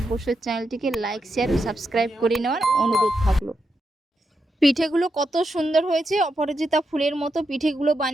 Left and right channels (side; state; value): both; normal; correlation 0.85